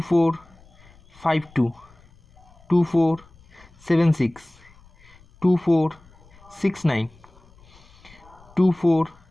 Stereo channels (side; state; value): left; noise; rumble, 27 dB below the sound